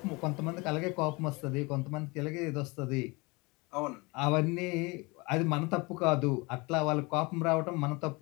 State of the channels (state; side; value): quieter; right; 26.1 dB